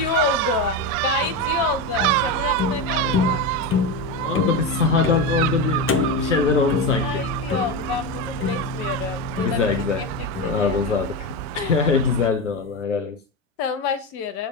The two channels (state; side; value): normal; both; correlation 0.17